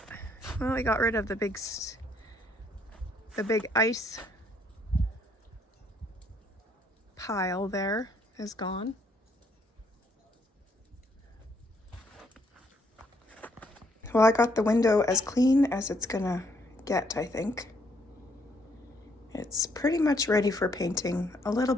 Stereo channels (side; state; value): both; normal; correlation 0.69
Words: well, we got rid of the big ice pile there is gone. Well, I got the window as clean as it's gonna get, I think. It's pretty much ready for painting. A little